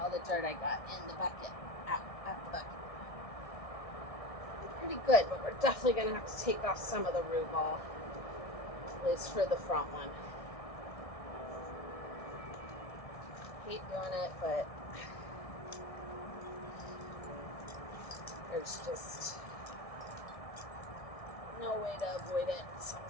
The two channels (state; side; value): late; right; 1.6 ms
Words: the dirt I got in the bucket, out the bucket. Pretty good, but we're definitely going to have to take off some of the root ball, at least for the front one. Hate doing it, but there's just no way to avoid it